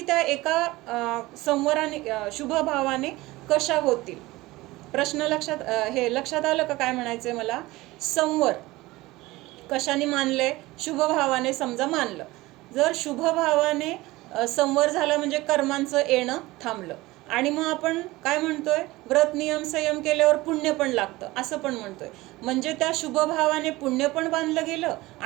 एका संवराने शुभभावाने कशा होतील? प्रश्न लक्षात आलं का काय म्हणायचंय मला? संवर कशाने मानलंय? शुभभावाने समजा मानलं. जर शुभभावाने संवर झाला म्हणजे कर्मांचं येणं थांबलं. आणि मग आपण काय म्हणतोय? व्रत नियम संयम केल्यावर पुण्य पण लागतं असं पण म्हणतोय. म्हणजे त्या शुभभावाने पुण्य पण बांधलं गेलं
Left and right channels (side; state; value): left; quieter; 19.6 dB